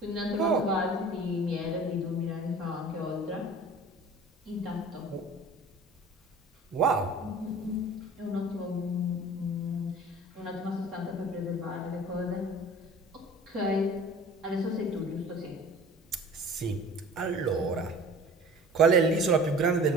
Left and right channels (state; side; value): normal; both; correlation 0.44